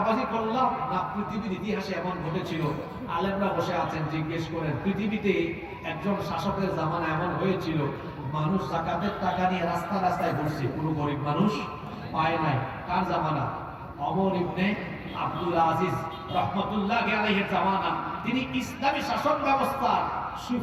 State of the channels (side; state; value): both; identical; correlation 1.00